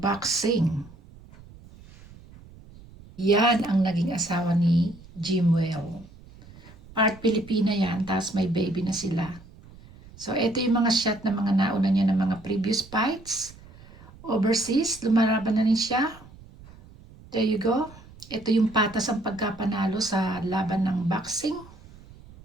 Yan ang naging asawa ni Jimwell. Part Pilipina yan, tapos may baby na sila. So, ito yung mga shot na mga nauna niya ng mga previous fights. Overseas, lumalaban na rin siya. There you go. Ito yung patas ang pagkapanalo sa laban ng boxing.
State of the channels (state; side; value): noise; right; rumble, 21 dB below the sound